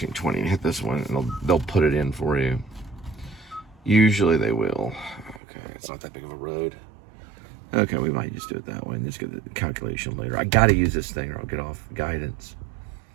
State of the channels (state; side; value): drops out; left; at 5.4 s